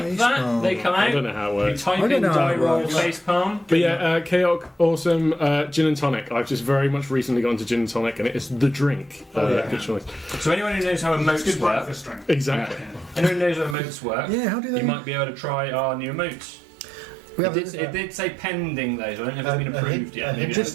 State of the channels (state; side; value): drops out; left; at 13.8 s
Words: that, facepalm. they come I out. don't know how it If you works. type I don't in know how die it roll works. facepalm. But yeah, Chaotic, awesome gin and tonic. I've just very much recently gone to gin and tonic, and it is the drink. yeah. Good choice. So anyone who knows how It's emotes good work, breakfast drink. Exactly. anyone who knows how emotes work, Yeah, how do they? you might be able to try our new emotes. We It have did, it did say pending though, so I don't know if it's been approved yet. Maybe